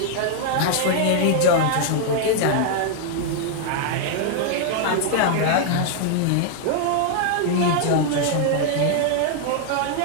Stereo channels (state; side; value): different; both; correlation -0.01